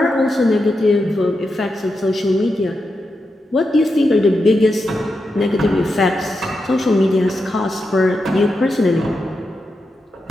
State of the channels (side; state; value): both; normal; correlation 0.87